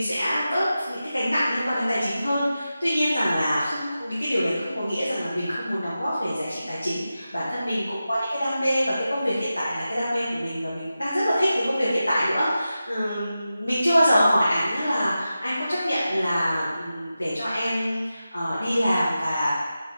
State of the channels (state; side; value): inverted; both; correlation -0.93